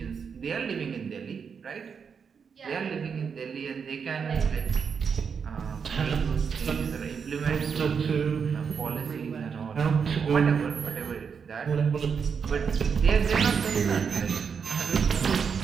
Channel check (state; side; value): quieter; left; 6.3 dB